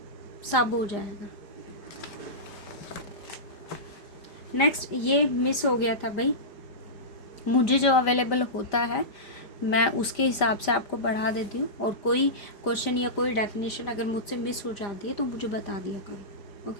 सब हो जाएगा। नेक्स्ट ये मिस हो गया था भाई, मुझे जो अवेलेबल होता है मैं उसके हिसाब से आपको बढ़ा देती हूँ, और कोई क्वेश्चन या कोई डेफिनेशन अगर मुझसे मिस हो जाती है तो मुझे बता दिया करो।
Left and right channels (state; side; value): late; right; 5.0 ms